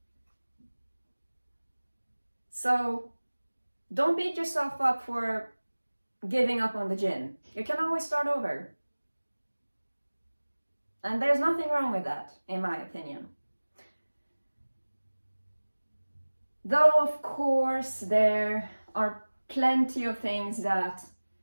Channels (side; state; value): both; inverted; correlation -1.00